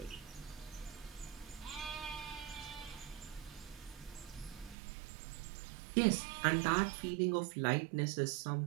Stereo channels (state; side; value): drops out; left; at 4.8 s